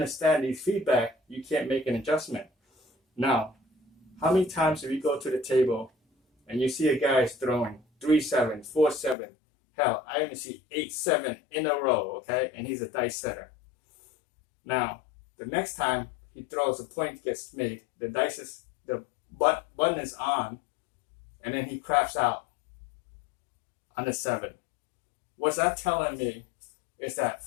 these feedback, you can't make an adjustment. Now, how many times do we go to the table and you see a guy is throwing 3, 7, 4, 7? Hell, I even see 8, 7 in a row, okay? And he's a dice setter. Now, the next time he throws, a point gets made, the dice is, the button is on, and then he crafts out on the 7. What's that telling me is that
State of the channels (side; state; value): right; drops out; at 9.2 s